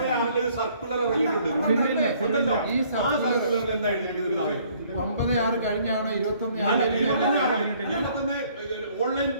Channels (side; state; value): both; inverted; correlation -0.61